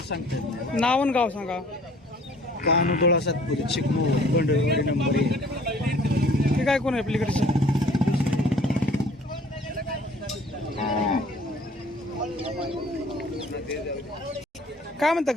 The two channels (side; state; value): both; normal; correlation 0.53